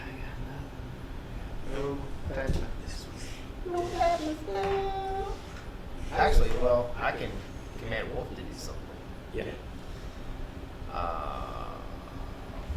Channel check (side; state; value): both; identical; correlation 1.00